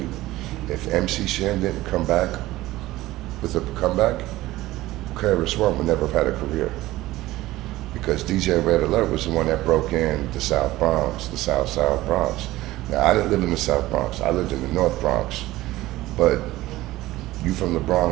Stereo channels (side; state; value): left; quieter; 17.1 dB